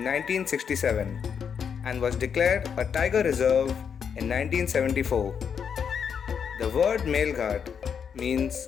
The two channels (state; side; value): quieter; right; 7.2 dB